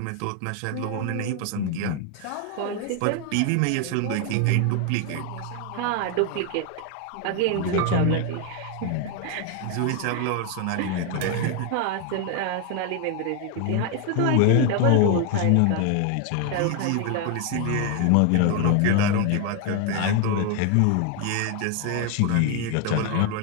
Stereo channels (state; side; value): different; both; correlation 0.01